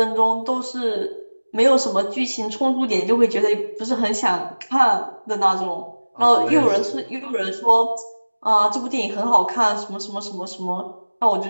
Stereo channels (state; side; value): inverted; both; correlation -1.00